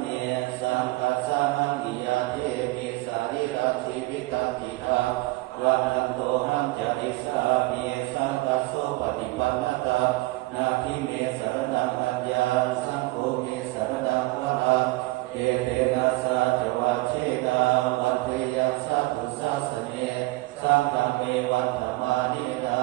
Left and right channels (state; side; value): quieter; left; 21.3 dB